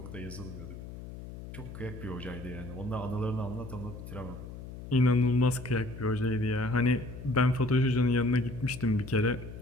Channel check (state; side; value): noise; left; hum, 12 dB below the sound